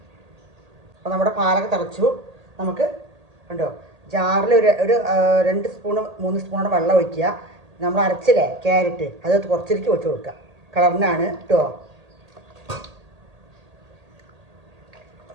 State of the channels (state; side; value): late; left; 1.8 ms